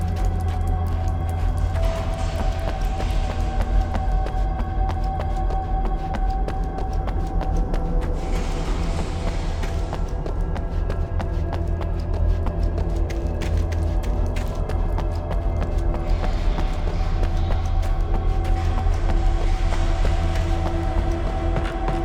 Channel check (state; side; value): identical; both; correlation 1.00